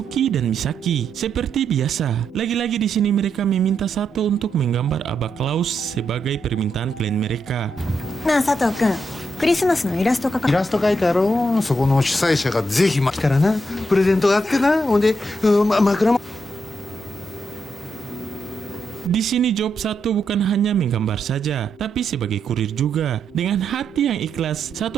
dan Misaki. Seperti biasa, lagi-lagi di sini mereka meminta Sato untuk menggambar Abba Klaus sebagai permintaan klien mereka. なあ佐藤君、クリスマスのイラスト描かイラスト描いてあろう。そこの主催者がぜひ来たらなプレゼントがあってな。ほんで、枕も Di sini job Sato bukan hanya menggambar saja, tapi sebagai kurir juga. Dengan hati yang ikhlas,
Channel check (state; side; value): normal; both; correlation 0.82